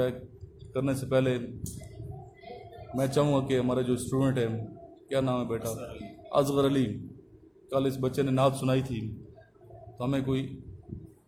ہے کرنے سے پہلے میں چاہوں گا کہ ہمارا جو اسٹوڈنٹ ہے، کیا نام ہے بیٹا؟ اصغر علی، کل اس بچے نے نعت سنائی تھی، تو ہمیں کوئی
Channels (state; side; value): identical; both; correlation 1.00